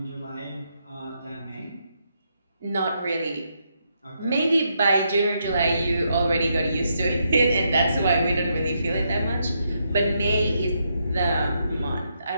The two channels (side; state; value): both; inverted; correlation -0.79